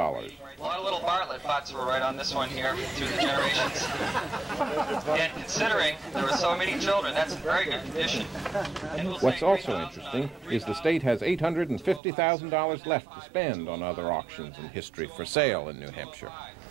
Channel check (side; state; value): left; drops out; at 12.0 s